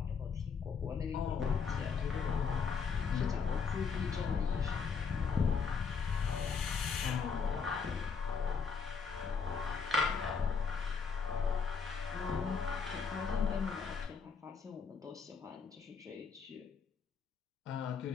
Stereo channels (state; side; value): quieter; right; 5.7 dB